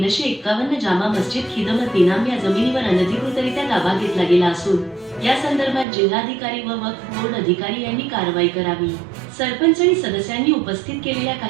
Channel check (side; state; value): left; drops out; at 5.9 s